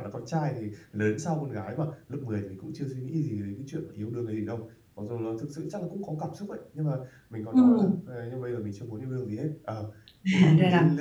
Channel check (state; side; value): identical; both; correlation 1.00